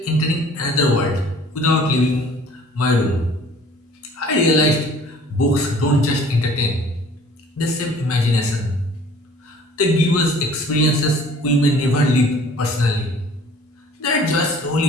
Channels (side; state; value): both; normal; correlation 0.51